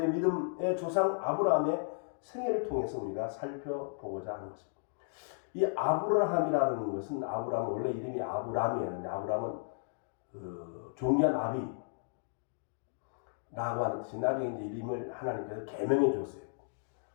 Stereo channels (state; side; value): silent; right; digital silence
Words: 믿음의 조상 아브라함의 생애를 통해서 우리가 살펴보고자 하는 것입니다. 이 아브라함이라는 것은 아브라함은 원래 이름이 아브람이었는데 아브라함은 존귀한 아비라고 하는 뜻이 나중에 이제 이름을 하나님께서 계명해 줬어요.